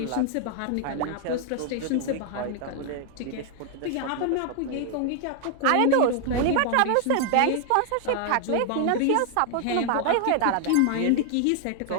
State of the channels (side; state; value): both; different; correlation 0.00